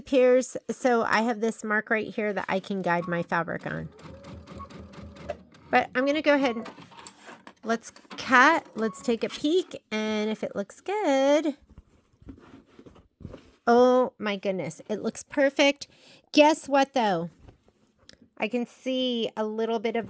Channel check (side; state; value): both; identical; correlation 1.00